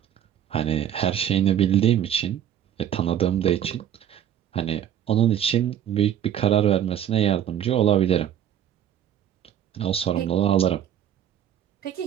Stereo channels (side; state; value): left; quieter; 10.1 dB